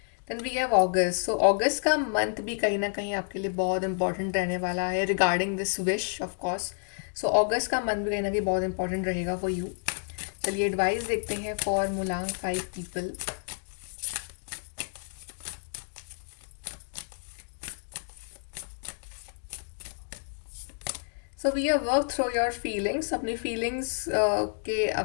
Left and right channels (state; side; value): silent; right; 58 dB below the other